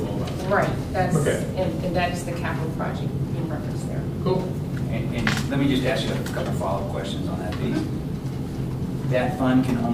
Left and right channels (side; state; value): both; identical; correlation 1.00